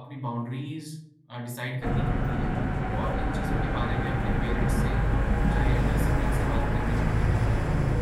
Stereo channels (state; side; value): identical; both; correlation 1.00